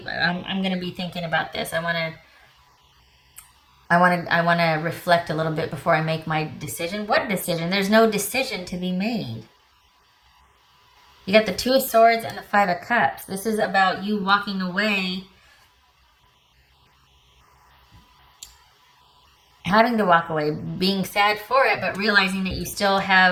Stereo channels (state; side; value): identical; both; correlation 1.00